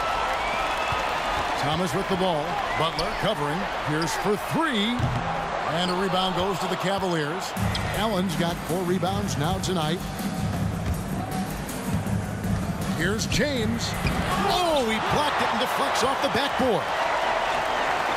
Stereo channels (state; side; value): identical; both; correlation 1.00